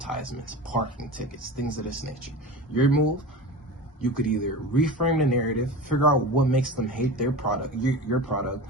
parking tickets, things of this nature. Your move, you could either reframe the narrative, figure out what makes them hate their product, your product,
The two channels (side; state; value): both; normal; correlation 0.31